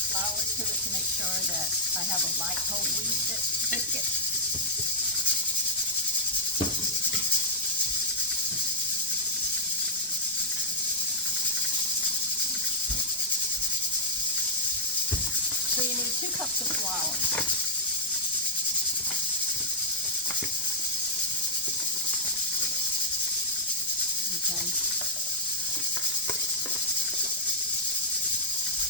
flour to it to make sure that I have a light whole wheat biscuit. So you need 2 cups of flour. Okay.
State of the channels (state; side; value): normal; both; correlation -0.07